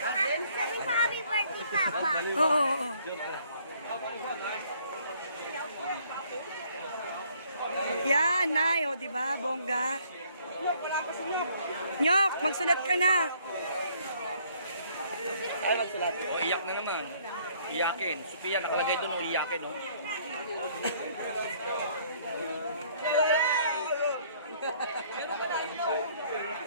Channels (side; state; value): both; inverted; correlation -0.62